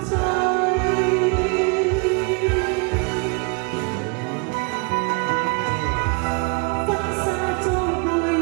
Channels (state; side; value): quieter; left; 32.6 dB